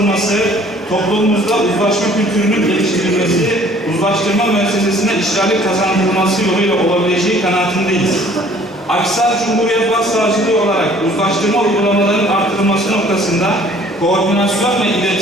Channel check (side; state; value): both; normal; correlation 0.55